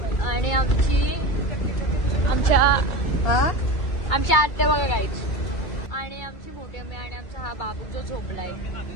आणि आमच्या आत्या बघा गाईच. आणि आमची मोठी अम्मी आणि आमचा हा बाबू जो झोपलाय.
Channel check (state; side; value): late; right; 2.2 ms